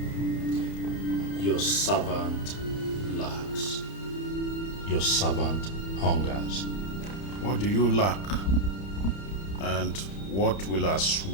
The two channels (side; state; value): right; late; 30 ms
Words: Your servant lacks. Your servant hungers. What do you lack? And what will